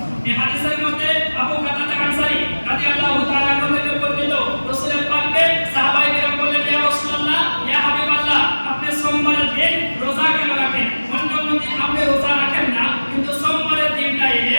এই হাদিসের মধ্যে আবু কাতাদা আল-আনসারী রাদিয়াল্লাহু তাআলা আনহু থেকে বর্ণিত, রাসূলের পাককে সাহাবায়ে কেরাম বললেন, ইয়া রাসূলুল্লাহ, ইয়া হাবিবাল্লাহ, আপনি সোমবারের দিন রোজা কেন রাখেন? অন্য দিন আপনি রোজা রাখেন না, কিন্তু সোমবারের দিনটা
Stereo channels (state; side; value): inverted; both; correlation -1.00